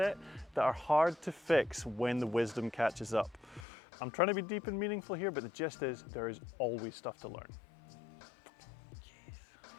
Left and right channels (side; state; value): right; drops out; at 3.7 s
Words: that are hard to fix when the wisdom catches up. I'm trying to be deep and meaningful here, but the gist is there is always stuff to learn.